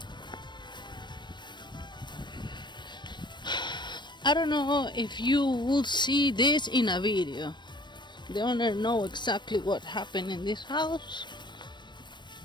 I don't know if you will see this in a video. The owner know exactly what happened in this house.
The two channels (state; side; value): late; right; 0.22 ms